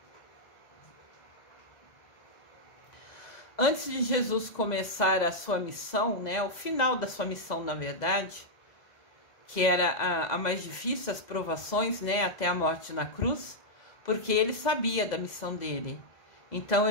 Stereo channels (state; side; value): late; right; 2.0 ms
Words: Antes de Jesus começar a sua missão, o final da sua missão, na verdade, que era a mais difícil, as provações, até a morte na cruz, porque ele sabia da missão dele. Então